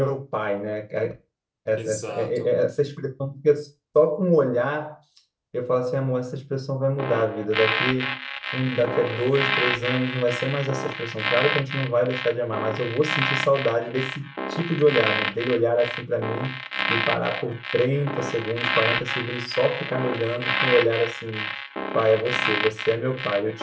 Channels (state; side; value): identical; both; correlation 1.00